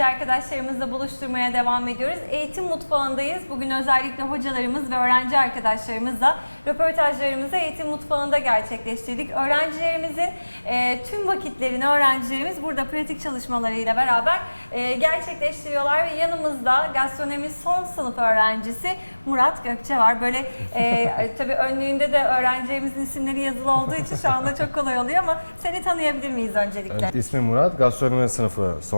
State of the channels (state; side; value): inverted; both; correlation -1.00